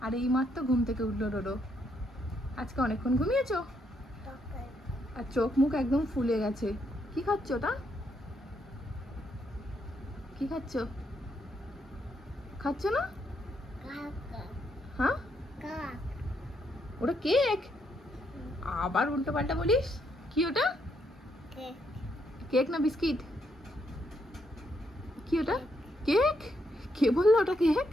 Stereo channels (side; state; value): both; normal; correlation 0.76